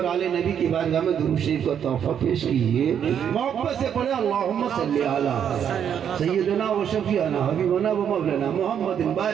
आले नबी की बारगाह में दुरूद शरीफ का तोहफा पेश कीजिए। मोहब्बत से पढ़े अल्लाहुम्मा सल्ली अला सय्यदना व शफीअना हबीबना व मौलाना मुहम्मदिन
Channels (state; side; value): quieter; left; 8.6 dB